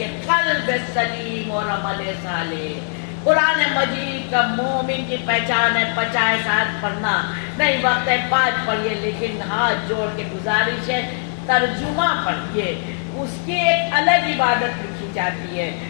قلب سلیم اور عمل صالح۔ قرآن مجید کا مومن کی پہچان ہے 50 ساتھ پڑھنا، نہیں وقت ہے 5 پڑھیے، لیکن ہاتھ جوڑ کے گزارش ہے ترجمہ پڑھیے، اس کی ایک الگ عبادت لکھی جاتی ہے،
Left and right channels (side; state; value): right; silent; 62 dB below the other